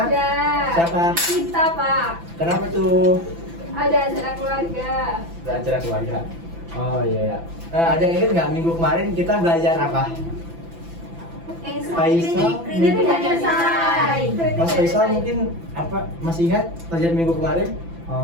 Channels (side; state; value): left; late; 5.9 ms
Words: Ada. Siapa? Kita, Pak. Kenapa tuh? Ada acara keluarga. Ada acara keluarga. Oh iya ya. Ada yang ingat nggak minggu kemarin kita belajar apa? Faisal. Kritik tidak selesai. Mas Faisal mungkin apa masih ingat pelajaran minggu kemarin?